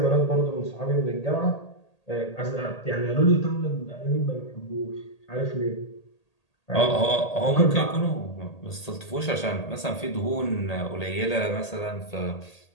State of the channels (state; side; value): late; right; 1.8 ms